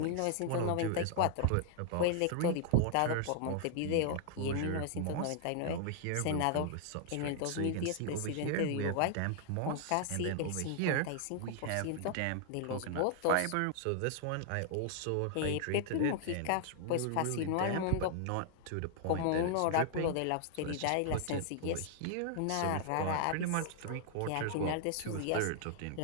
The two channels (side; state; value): both; different; correlation 0.00